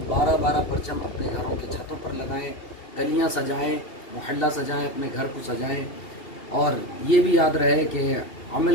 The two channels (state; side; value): late; right; 2.7 ms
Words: 12-12 परचम अपने घरों के छतों पर लगाएं, गलियां सजाएं, मोहल्ला सजाएं, अपने घर को सजाएं और ये भी याद रहे कि